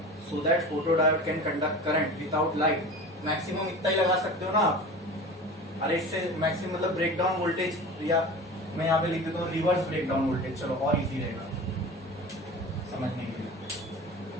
so that photodiode can conduct current without light, maximum इतना ही लगा सकते हो ना आप। अरे इससे मैक्सिमम मतलब ब्रेकडाउन वोल्टेज, या मैं यहाँ पे लिख देता हूँ रिवर्स ब्रेकडाउन वोल्टेज, चलो और इजी रहेगा समझने के लिए।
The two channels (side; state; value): both; normal; correlation 0.35